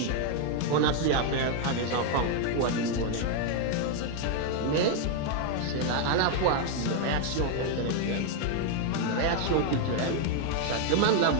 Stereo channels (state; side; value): different; both; correlation 0.00